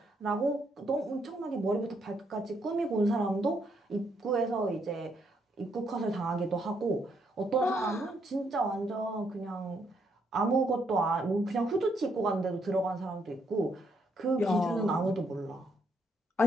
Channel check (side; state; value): both; normal; correlation 0.74